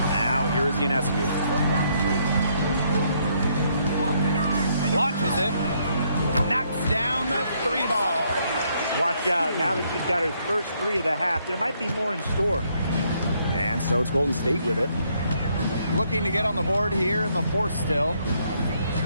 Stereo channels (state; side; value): inverted; both; correlation -0.71